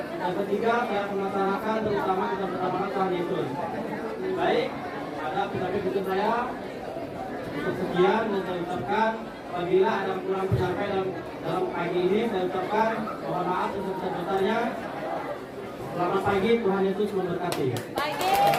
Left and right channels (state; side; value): identical; both; correlation 1.00